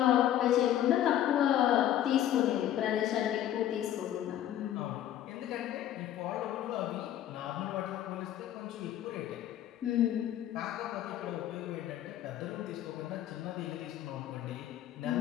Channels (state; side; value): quieter; right; 11.8 dB